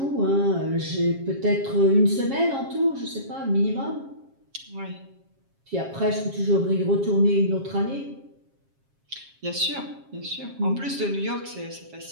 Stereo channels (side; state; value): left; late; 7.4 ms